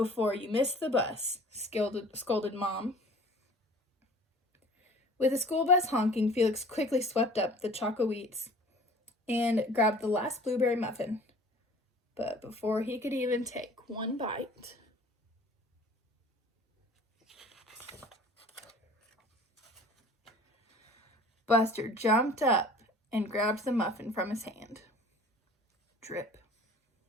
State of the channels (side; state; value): both; normal; correlation 0.47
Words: you miss the bus," scolded Mom. With the school bus honking, Felix quickly swept up the choco wheats and grabbed the last blueberry muffin. But before he could even take one bite, Buster jumped up and grabbed the muffin from his hand. Drip.